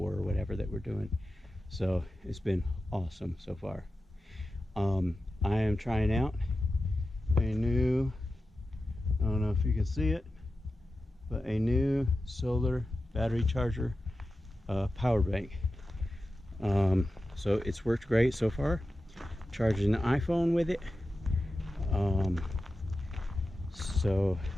or whatever that we're doing. So it's been awesome so far. I am trying out a new, I don't know if you can see it, but a new solar battery charger power bank. So it's worked great so far. Charging the iPhone with it. So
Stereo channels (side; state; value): both; normal; correlation 0.93